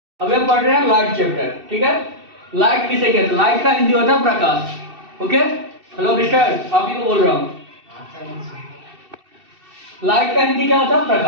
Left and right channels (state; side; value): late; left; 2.6 ms